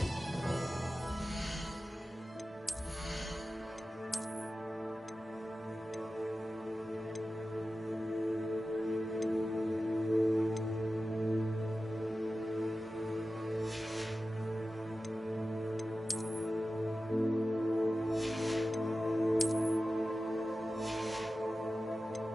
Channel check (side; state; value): both; normal; correlation 0.94